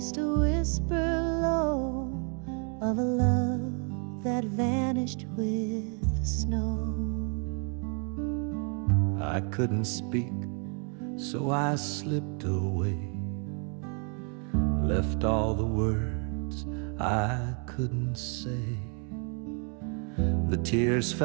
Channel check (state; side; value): quieter; left; 38.9 dB